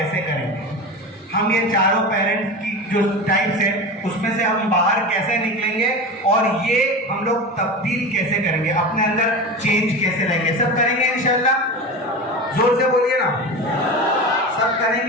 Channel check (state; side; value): normal; both; correlation 0.26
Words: करेंगे। हम ये चारों पेरेंट्स की जो टाइप्स है उसमें से हम बाहर कैसे निकलेंगे और ये हम लोग तब्दील कैसे करेंगे, अपने अंदर चेंज कैसे लाएंगे। सब करेंगे इंशाल्लाह, जोर से बोलिए ना, सब